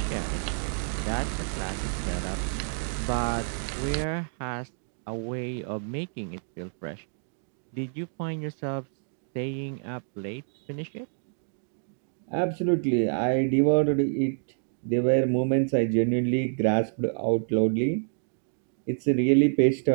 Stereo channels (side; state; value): left; silent; digital silence